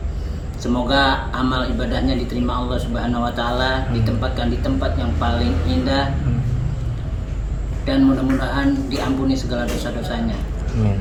Semoga amal ibadahnya diterima Allah Subhanahu wa taala, ditempatkan di tempat yang paling indah, dan mudah-mudahan diampuni segala dosa-dosanya. Amin.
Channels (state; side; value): identical; both; correlation 1.00